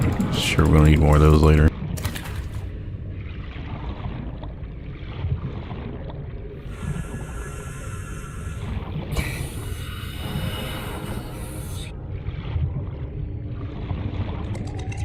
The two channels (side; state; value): both; identical; correlation 1.00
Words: Sure, we're gonna need more of those later.